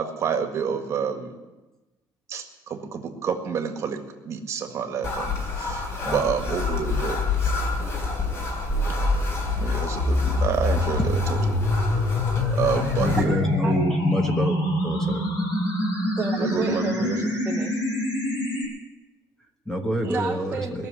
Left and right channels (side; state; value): both; normal; correlation 0.60